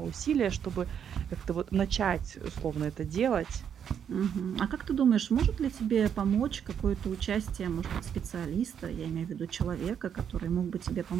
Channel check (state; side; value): quieter; left; 8.3 dB